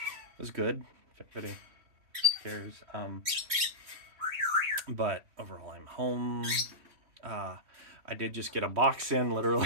was good, if anybody cares. But overall, I'm home. I did just get a box in,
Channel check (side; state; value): left; late; 3.1 ms